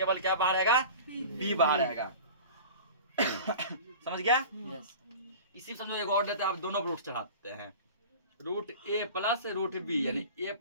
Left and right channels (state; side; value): inverted; both; correlation -0.36